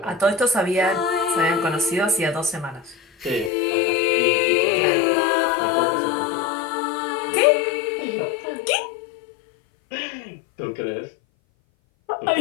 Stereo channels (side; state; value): right; drops out; at 3.5 s